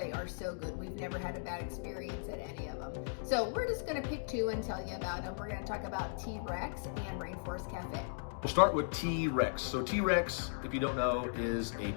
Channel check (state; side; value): silent; right; digital silence